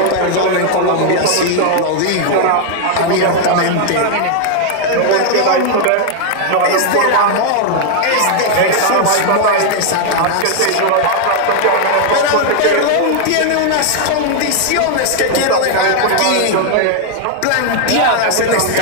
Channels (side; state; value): both; different; correlation 0.00